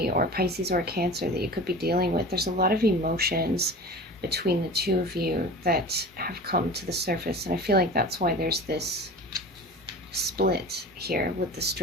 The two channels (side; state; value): both; normal; correlation 0.36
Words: or Pisces or a Cancer that you could be dealing with. There's a lot of emotions between the two of you that have come to the surface, and I feel like that's why there's this split here with the